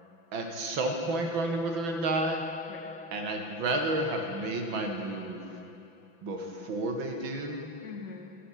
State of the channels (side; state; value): left; late; 6.0 ms